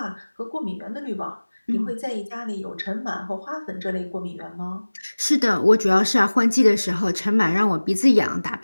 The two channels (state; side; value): inverted; both; correlation -1.00